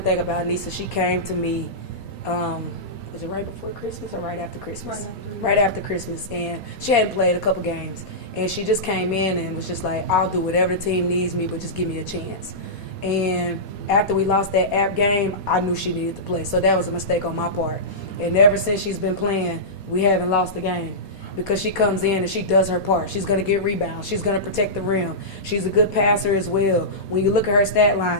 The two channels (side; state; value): right; late; 4.2 ms